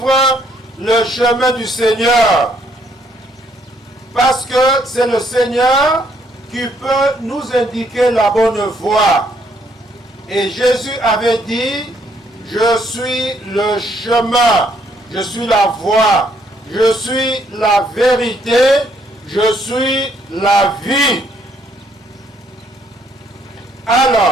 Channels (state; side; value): normal; both; correlation 0.69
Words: le chemin du Seigneur? Parce que c'est le Seigneur qui peut nous indiquer la bonne voie. Et Jésus avait dit, je suis le chemin, je suis la voie, je suis la vérité, je suis la vie.